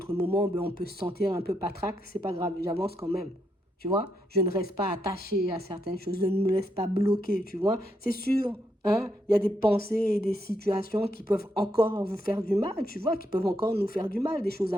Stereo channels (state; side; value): normal; both; correlation 0.79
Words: moments, ben, on peut se sentir un peu patraque. C'est pas grave, j'avance quand même. Tu vois, je ne reste pas attaché à certaines choses, je ne me laisse pas bloquer, tu vois. C'est sûr, Hein? Il y a des pensées et des situations qui peuvent encore vous faire du mal, tu vois, qui peuvent encore nous faire du mal, des choses